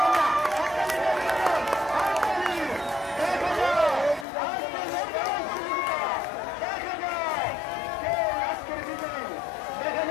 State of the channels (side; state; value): right; drops out; at 4.2 s